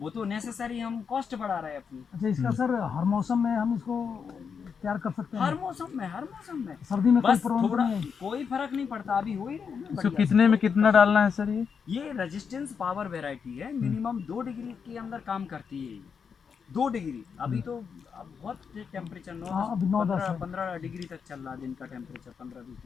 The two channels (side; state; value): right; quieter; 6.3 dB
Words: तो नेसेसरी हम कॉस्ट बढ़ा रहे हैं अपनी। अच्छा, इसका सर हर मौसम में हम इसको तैयार कर सकते हैं? हर मौसम में सर्दी में बस कोई प्रॉब्लम थोड़ा नहीं है? कोई फर्क नहीं पड़ता, अभी हो ही रहे हैं ना इसको बढ़िया कितने से। में कितना डालना है सर? ये ये रेजिस्टेंस पावर वेराइटी है, मिनिमम 2 डिग्री के अंदर काम करती है ये। 2 डिग्री अभी तो अब बहुत टेम्परेचर हाँ, अभी 9-10 है। 15 डिग्री तक चल रहा है दिन का टेम्परेचर, 15-20